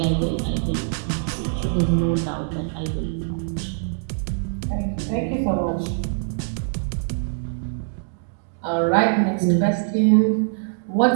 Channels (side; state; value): left; silent; 63 dB below the other